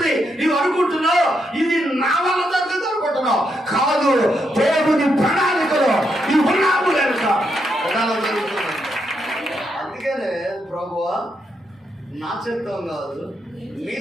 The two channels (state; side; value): normal; both; correlation 0.80